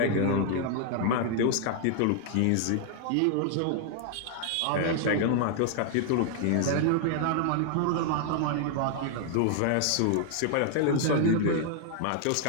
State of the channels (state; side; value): different; both; correlation 0.00